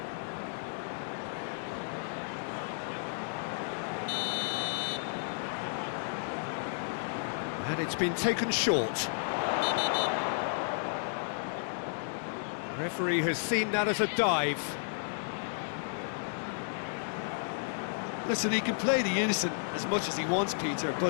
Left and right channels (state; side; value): silent; right; digital silence